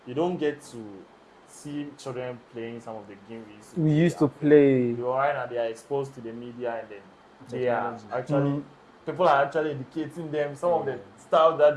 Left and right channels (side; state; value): both; identical; correlation 1.00